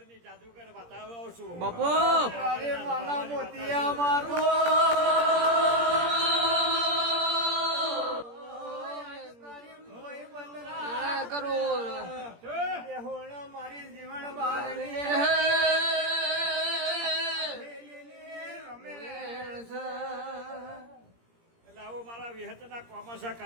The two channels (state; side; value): late; left; 17 ms